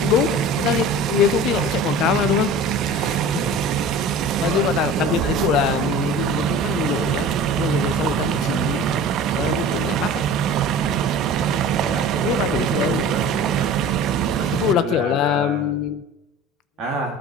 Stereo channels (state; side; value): normal; both; correlation 0.39